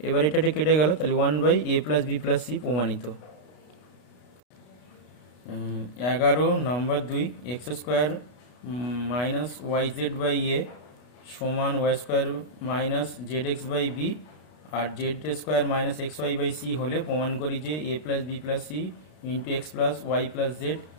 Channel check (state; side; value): late; right; 33 ms